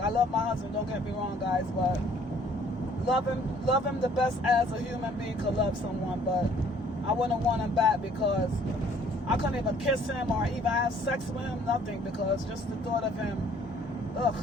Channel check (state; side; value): normal; both; correlation 0.59